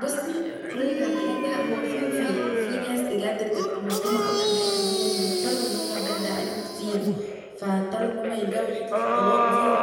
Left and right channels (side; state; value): both; identical; correlation 1.00